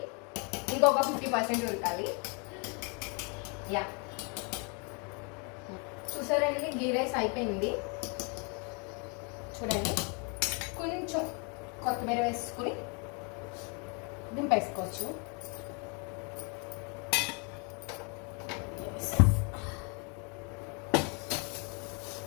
ఇంకొక 50% ఉడకాలి. యా, చూసారండి గీ రైస్ అయిపోయింది. చూడండి, కొంచెం కొత్తిమీర వేసుకుని దింపేసుకోవచ్చు.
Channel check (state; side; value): quieter; right; 34.5 dB